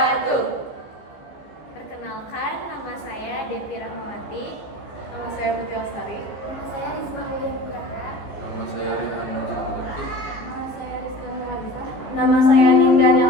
Perkenalkan, nama saya Devi Rahmawati. Nama saya Putri Lestari. Nama saya Risma William Nugraha. Nama saya Rehan Najib Mujaki. Nama saya Rizky Nuwalisa. Nama saya Ninda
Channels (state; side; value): late; right; 15 ms